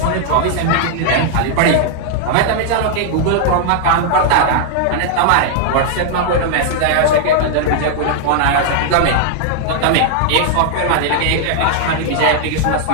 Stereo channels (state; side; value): different; both; correlation -0.01